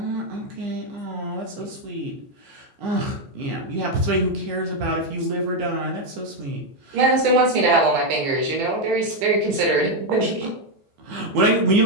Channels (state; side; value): late; left; 15 ms